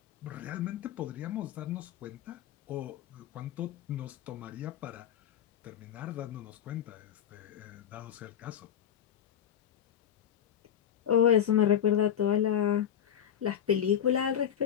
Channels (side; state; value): right; quieter; 9.4 dB